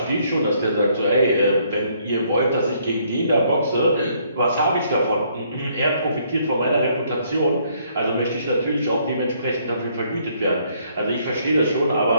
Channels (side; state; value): both; inverted; correlation -0.68